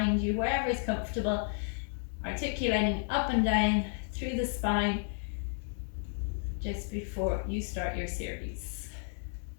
you, wherever is comfortable, articulating up and down through the spine just before you start your series.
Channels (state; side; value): silent; right; 56 dB below the other